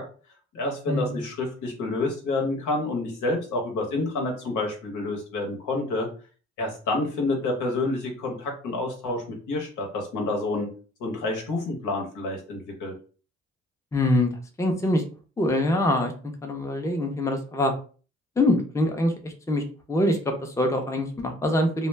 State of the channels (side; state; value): both; normal; correlation 0.53